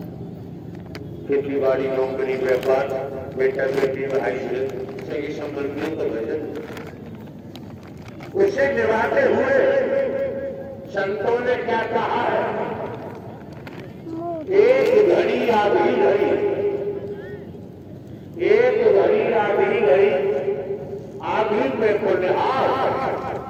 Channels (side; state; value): both; identical; correlation 1.00